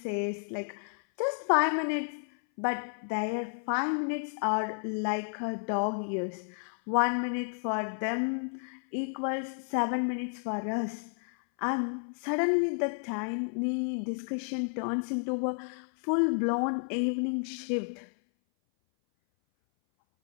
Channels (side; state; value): right; silent; 57 dB below the other